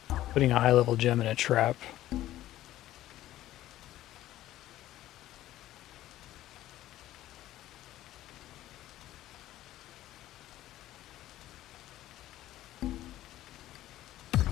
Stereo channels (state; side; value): quieter; right; 14.3 dB